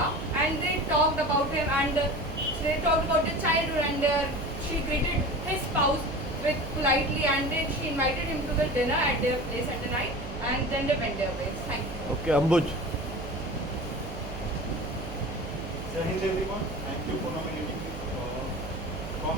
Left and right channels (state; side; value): noise; right; hum, 10 dB below the sound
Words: and they talked about him and they talked about their childhood, and she greeted his spouse with politely, and then she invited him to the dinner at their place at the night, and then they went their ways. Thank you. Okay, Ambuj. Jai Hind everyone, thank you for nominating me. From